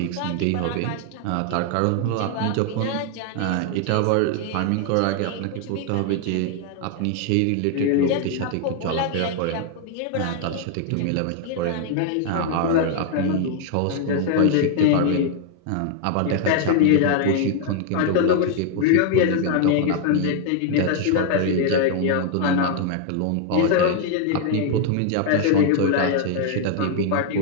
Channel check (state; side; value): different; both; correlation 0.00